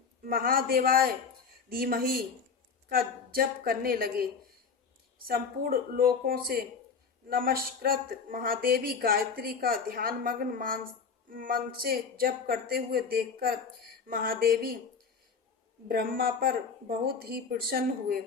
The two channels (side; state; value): right; quieter; 5.7 dB